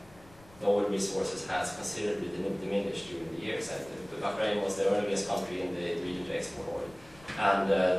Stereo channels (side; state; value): left; noise; rumble, 24 dB below the sound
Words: the oil resources has considerably diminished during the years. And Bahrain was the earliest country in the region to export oil. And